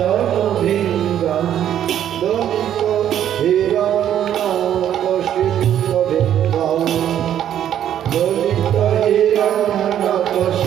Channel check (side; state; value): left; quieter; 10.5 dB